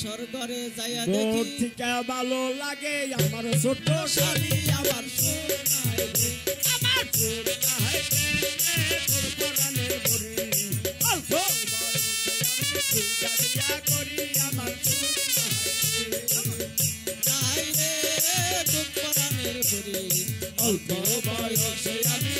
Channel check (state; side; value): identical; both; correlation 1.00